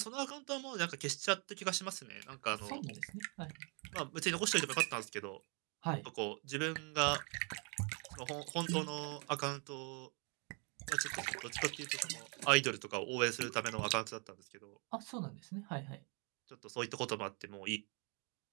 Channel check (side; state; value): left; quieter; 35.1 dB